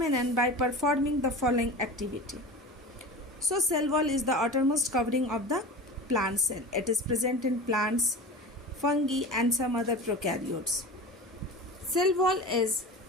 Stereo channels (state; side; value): normal; both; correlation 0.32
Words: by performing the following activity. So, cell wall is the outermost covering of the plant cell. It is present in plants, fungi, and some other prokaryotes. Cell wall is